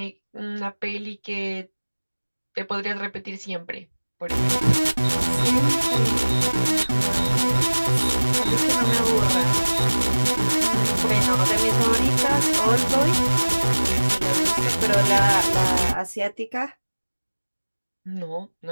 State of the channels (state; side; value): inverted; both; correlation -1.00